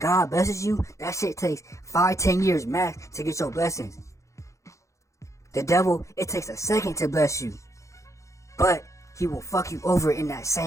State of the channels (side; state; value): right; late; 0.15 ms